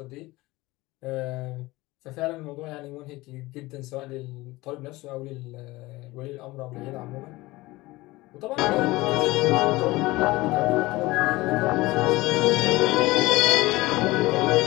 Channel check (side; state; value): right; quieter; 20.3 dB